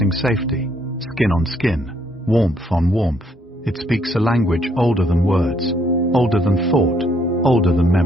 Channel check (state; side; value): normal; both; correlation 0.69